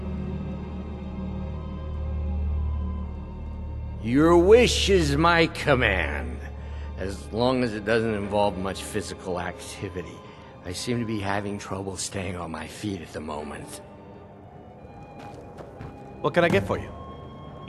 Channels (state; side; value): identical; both; correlation 1.00